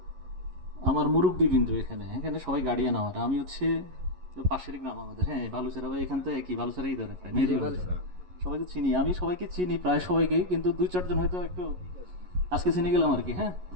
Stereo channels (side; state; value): left; late; 11 ms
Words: আমার মুরব্বিবৃন্দ, এখানে এখানে সবাই গার্ডিয়ান আমার, আমি হচ্ছে পাশের গ্রাম আমাদের, হ্যাঁ বালুচেরা ভাই, এখান থেকে কি বালুচেরাই ধরে প্রায় সবাইকে চিনি, আমি সবাইকে চিনি প্রায় সবাইকে, কিন্তু দুই চারজন হয়তো একটু আজকে চিনে গেলাম আর কি। হ্যাঁ,